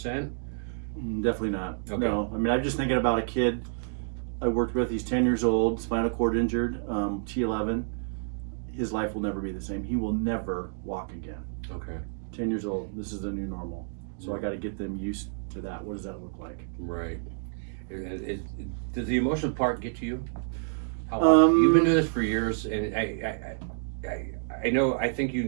Definitely not. Okay. No. I mean, I'm just thinking about a kid I worked with. He's 10 years old, spinal cord injured, T11. His life will never be the same. He will never walk again. Okay. 10 years old. This is the new normal. So I got to get them used to that. What does that look like? Right. Does the emotional part get to you? How long? You've been doing this for years, and I know. I think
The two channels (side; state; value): left; silent; digital silence